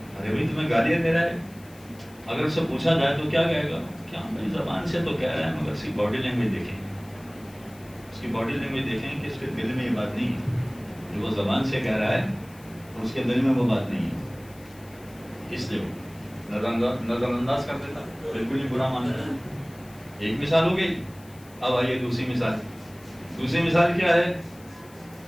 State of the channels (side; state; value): left; noise; hiss, 24 dB below the sound